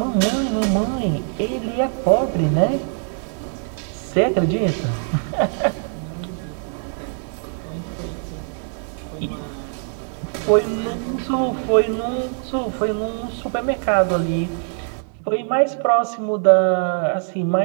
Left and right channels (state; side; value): silent; left; 57 dB below the other